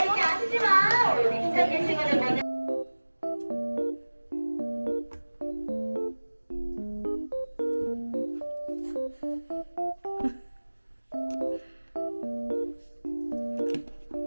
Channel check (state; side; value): inverted; both; correlation -1.00